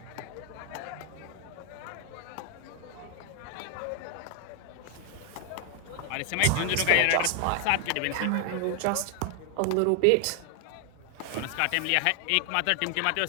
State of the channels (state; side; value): different; both; correlation 0.00